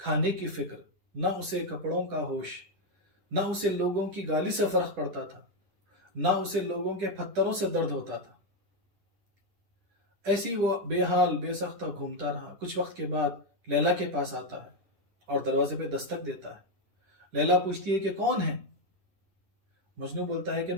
کی فکر، نہ اسے کپڑوں کا ہوش، نہ اسے لوگوں کی گالی سے فرق پڑتا تھا، نہ اسے لوگوں کے پتھروں سے درد ہوتا تھا۔ ایسی وہ بے حال بے سختہ گھومتا رہا۔ کچھ وقت کے بعد لیلا کے پاس آتا ہے اور دروازے پہ دستک دیتا ہے۔ لیلا پوچھتی ہے کہ کون ہے؟ مجنو بولتا ہے کہ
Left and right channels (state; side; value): late; left; 10 ms